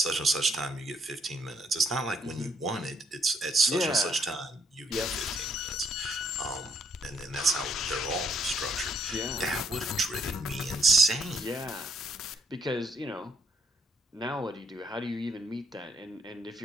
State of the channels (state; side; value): normal; both; correlation 0.71